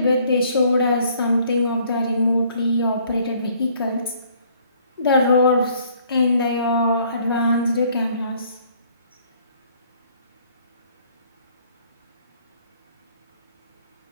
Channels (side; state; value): both; inverted; correlation -0.61